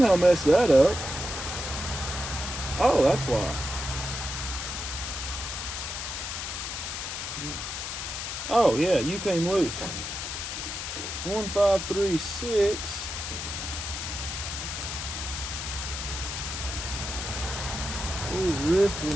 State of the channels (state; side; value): noise; left; hiss, 5 dB below the sound